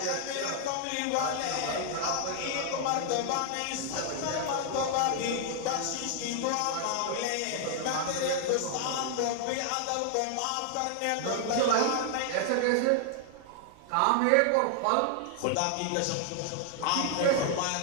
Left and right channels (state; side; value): different; both; correlation 0.00